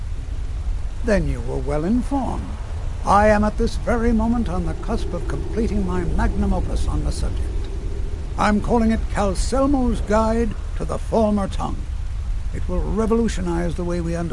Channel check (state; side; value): identical; both; correlation 1.00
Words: Then you were well informed. I am at this very moment on the cusp of completing my magnum opus on the subject. I'm calling it Calselmo's Guide to the Former Tongue. It will revolutionize the way we